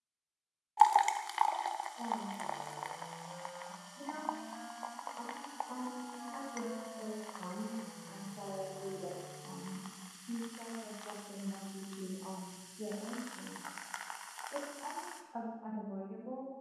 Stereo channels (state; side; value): identical; both; correlation 1.00